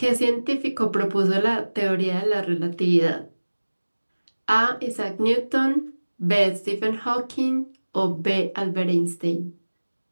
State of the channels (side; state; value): both; inverted; correlation -1.00